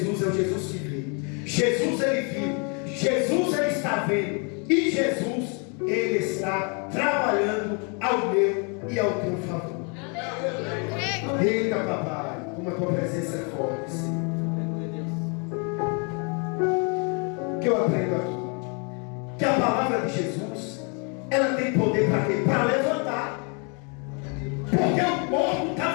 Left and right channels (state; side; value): quieter; right; 35.7 dB